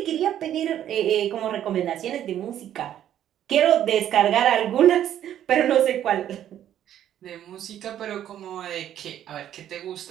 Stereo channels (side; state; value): left; quieter; 11.0 dB